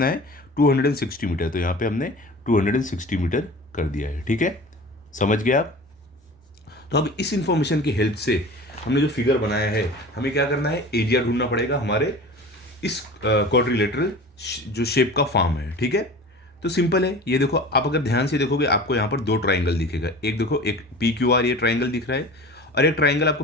है 260 मीटर, तो यहाँ पे हमने 260 मीटर कर दिया है, ठीक है। समझ गए आप। तो अब इस इंफॉर्मेशन की हेल्प से हमने जो फिगर बनाया है, हमें क्या करना है, एरिया ढूंढना पड़ेगा हमारे इस क्वाड्रिलेटरल जो शेप का फॉर्म है, ठीक है। तो सिंपल है, ये देखो आप अगर ध्यान से देखोगे आपको यहाँ पर दो ट्राइंगल दिखेगा, एक देखो एक पी क्यू आर ये ट्राइंगल दिख रहा है, और एक ट्राइंगल आपको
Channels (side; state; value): both; normal; correlation 0.38